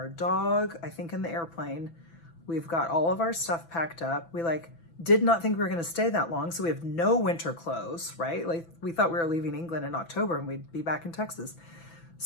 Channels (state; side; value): late; right; 6.0 ms